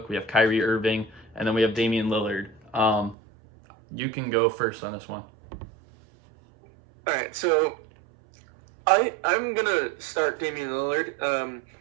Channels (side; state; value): left; drops out; at 3.2 s